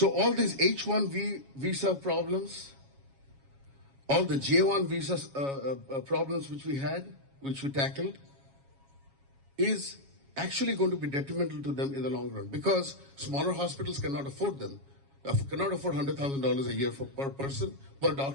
all these H-1B visa problems, all the J-1 visa problems which we tackled, is actually going to be detrimental to them in the long run because smaller hospitals cannot afford them, cannot afford $100,000 a year per person, per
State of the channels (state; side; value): late; left; 7.3 ms